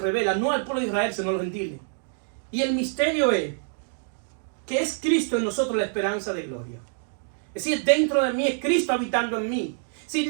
no al pueblo de Israel, sino a los gentiles. Y el misterio es que es Cristo en nosotros la esperanza de gloria. Es decir, dentro de mí es Cristo habitando en mí. Si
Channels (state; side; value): silent; left; digital silence